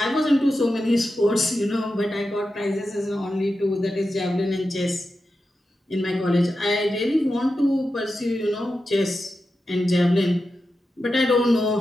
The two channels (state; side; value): normal; both; correlation 0.91